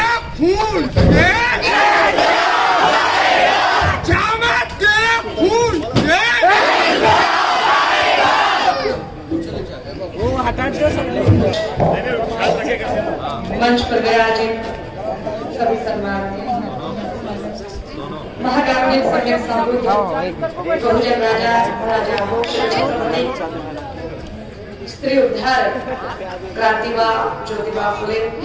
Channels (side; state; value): both; identical; correlation 1.00